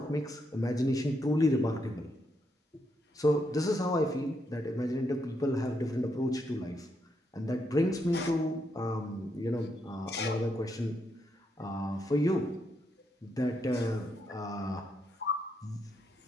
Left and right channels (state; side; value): normal; both; correlation 0.79